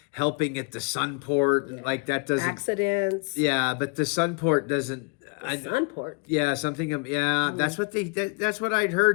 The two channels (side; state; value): right; quieter; 33.1 dB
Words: helping at the Sunport, like that doesn't Accidents. Yeah, but the Sunport doesn't. Sunport. Yeah, something. Yeah, that's what that's what I'd